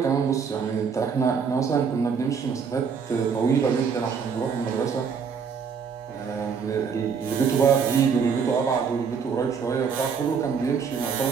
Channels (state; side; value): quieter; left; 6.2 dB